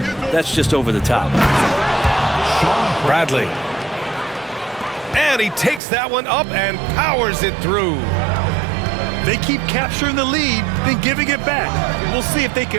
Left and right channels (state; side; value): drops out; left; at 5.8 s